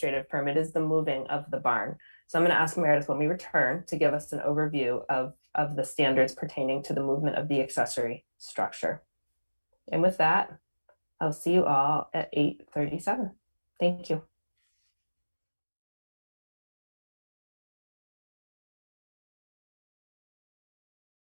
permit is the moving of the barn. So I'm going to ask Meredith when we return to give us an overview of the standards pertaining to the movement of the accessory structure. And with that, I'll see you all at 8:37. Thank you.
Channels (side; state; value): both; inverted; correlation -1.00